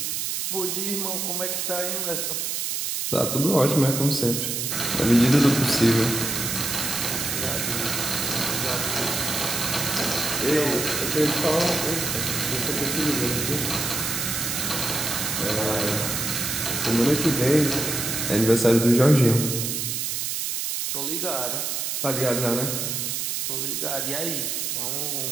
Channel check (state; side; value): noise; right; hiss, 1 dB below the sound